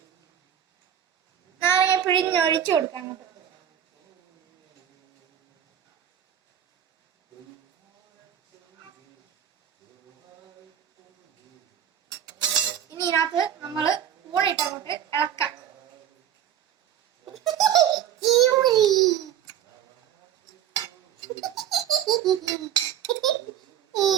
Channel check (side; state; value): left; quieter; 10.0 dB